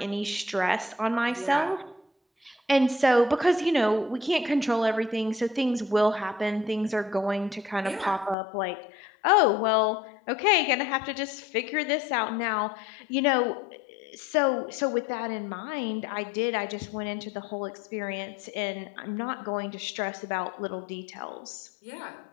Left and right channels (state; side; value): drops out; right; at 8.3 s